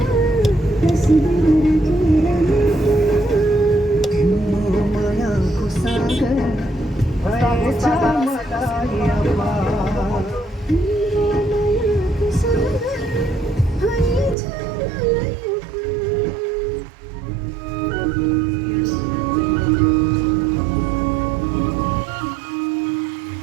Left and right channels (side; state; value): left; drops out; at 14.4 s